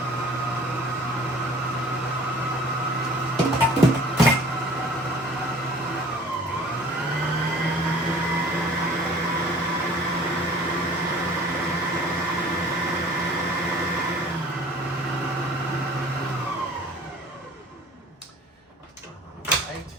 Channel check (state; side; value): normal; both; correlation 0.49